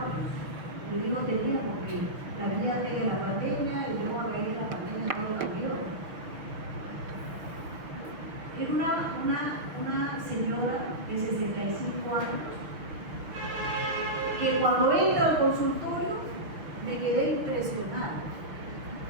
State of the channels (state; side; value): late; left; 6.3 ms